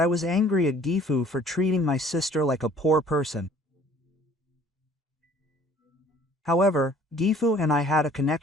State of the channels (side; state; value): both; normal; correlation 0.54